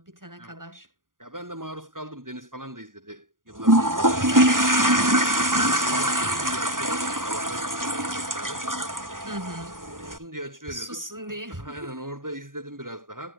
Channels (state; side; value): late; left; 0.90 ms